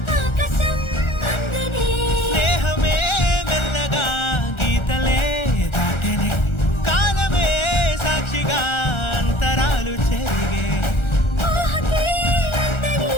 ఆకాశం అందనే స్నేహమే మెల్లగా గీతలే దాటెనే కాలమే సాక్షిగా అంతరాలు చెరిగే ఊహకే అందని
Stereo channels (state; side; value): late; right; 1.4 ms